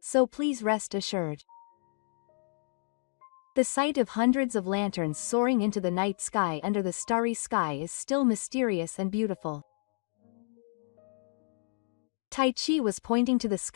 so please rest assured. The sight of hundreds of lanterns soaring into the night sky under the starry sky is still mysterious and beautiful. Taichi was pointing to the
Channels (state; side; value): silent; right; digital silence